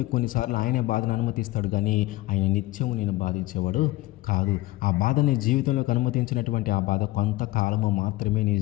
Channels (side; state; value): right; quieter; 18.8 dB